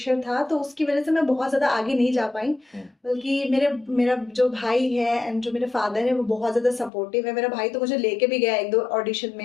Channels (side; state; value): right; drops out; at 6.9 s